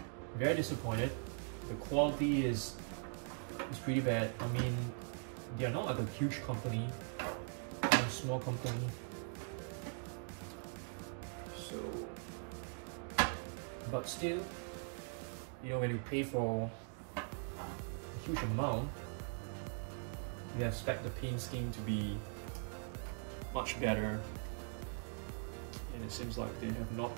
very disappointed. The quality is pretty bad. I mean, they are not like a huge company, they're a small company. So, but still, you know, when you pay for a huge amount, you expect the paint scheme to be much better, and it seems like they have not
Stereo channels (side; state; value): left; silent; 50 dB below the other